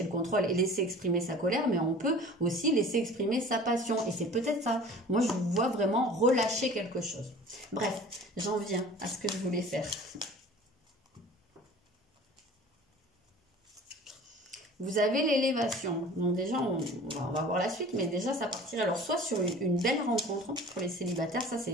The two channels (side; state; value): both; normal; correlation 0.43